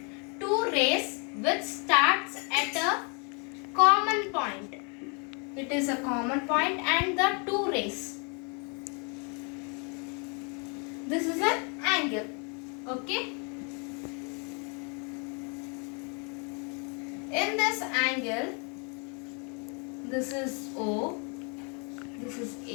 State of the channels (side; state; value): right; quieter; 35.9 dB